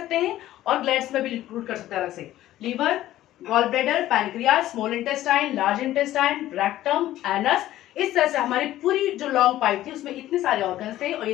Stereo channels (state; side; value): quieter; right; 14.2 dB